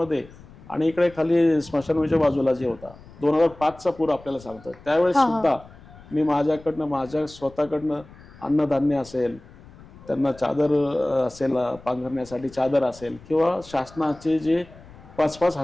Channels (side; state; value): left; noise; rumble, 21 dB below the sound